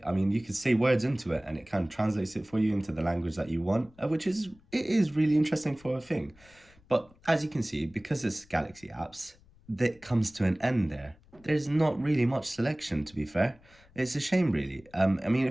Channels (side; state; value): left; noise; rumble, 28 dB below the sound